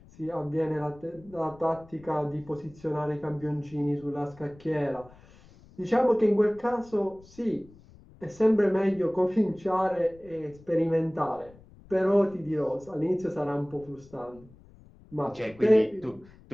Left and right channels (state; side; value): noise; left; rumble, 24 dB below the sound